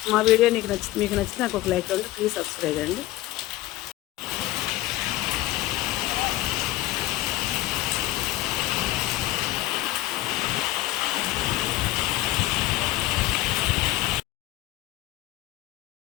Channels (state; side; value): quieter; right; 16.7 dB